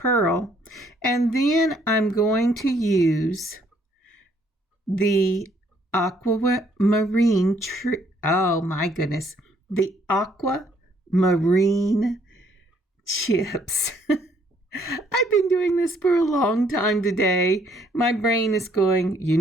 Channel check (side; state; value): both; normal; correlation 0.66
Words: And then I'm going to use the aquamarine the aquamarine chips. I've been doing this for a long time today. My brain is going, you